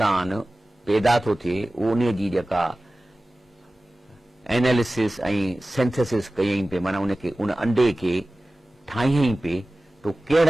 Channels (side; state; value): both; normal; correlation 0.97